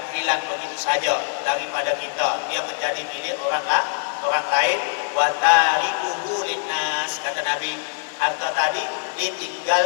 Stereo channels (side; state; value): right; silent; digital silence